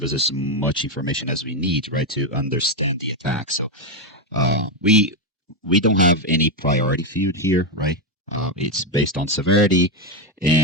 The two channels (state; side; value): normal; both; correlation 0.06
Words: us as much information as we need, right, to understand the attack. So we don't have any priority field here, right? It's based on severity,